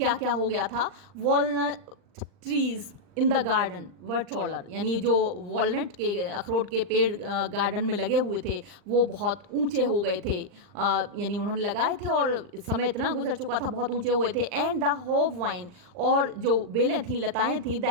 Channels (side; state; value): left; late; 39 ms